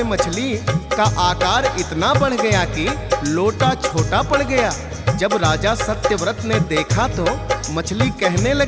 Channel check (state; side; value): identical; both; correlation 1.00